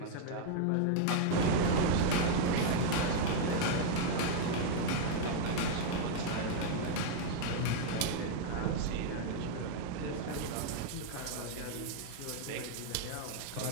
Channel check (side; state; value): both; different; correlation -0.01